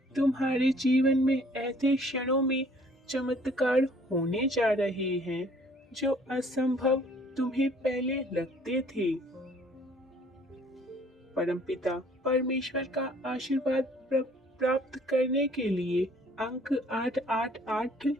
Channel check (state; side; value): normal; both; correlation 0.58